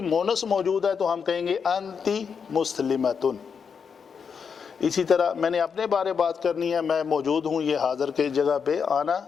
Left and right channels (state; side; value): quieter; right; 6.3 dB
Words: مونس موجود ہے تو ہم کہیں گے انتی مسلمتن. اسی طرح میں نے اپنے بارے بات کرنی ہے، میں موجود ہوں یہ حاضر کے جگہ پہ،